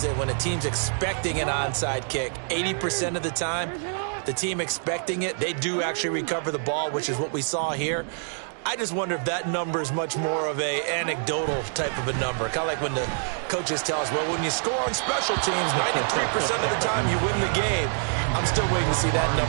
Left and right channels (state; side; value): silent; left; 61 dB below the other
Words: that when a team's expecting an onside kick, 80% of the time, the team expecting it, they do actually recover the ball, which is what we saw here. I just wonder if that number is much more of a anecdotal type of a number. Kind of like when the coaches tell us, well, when you score on special teams, 93% of the time you win the game. I'm still waiting to see that